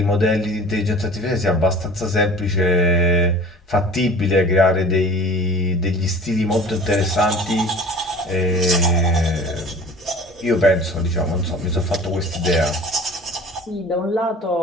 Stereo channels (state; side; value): normal; both; correlation 0.43